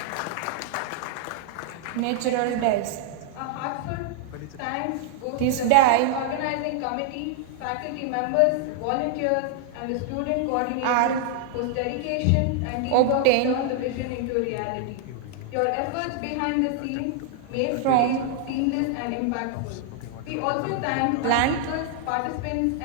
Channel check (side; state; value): both; different; correlation 0.00